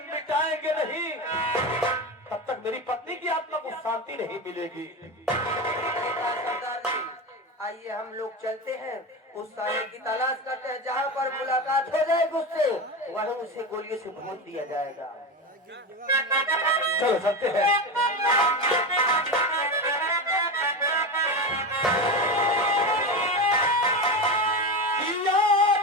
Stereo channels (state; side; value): normal; both; correlation 0.20